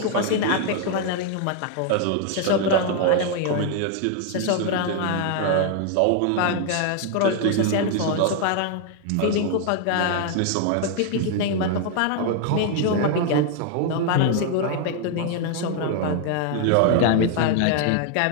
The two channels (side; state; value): both; different; correlation 0.00